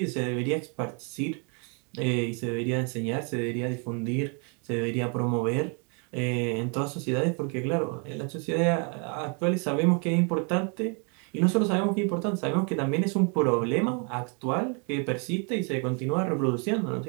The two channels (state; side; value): quieter; left; 36.8 dB